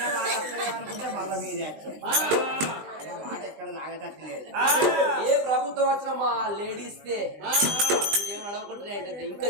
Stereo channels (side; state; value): left; late; 20 ms